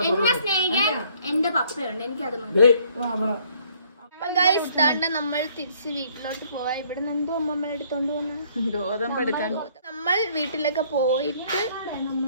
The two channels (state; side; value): inverted; both; correlation -0.62